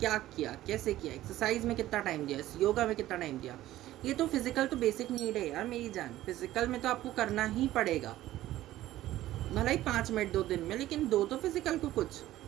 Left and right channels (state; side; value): quieter; left; 14.8 dB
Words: किया, कैसे किया, एक्सरसाइज में कितना टाइम दिया, योगा में कितना टाइम दिया। ये तो फिजिकल तो बेसिक नीड है यार मेरी जान, फिजिकल में तो आपको करना ही पड़ेगा, भला ही 5 मिनट 2 दिन में, लेकिन 2 तो फिजिकल को कुछ।